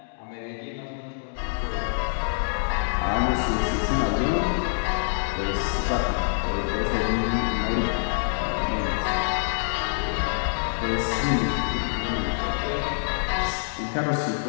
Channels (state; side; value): silent; right; digital silence